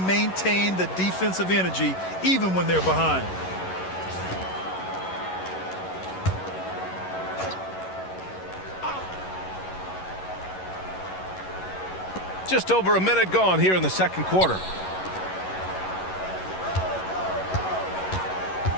the defensive energy even when they're behind. Just over a minute gone here in the second quarter.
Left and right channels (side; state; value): right; late; 11 ms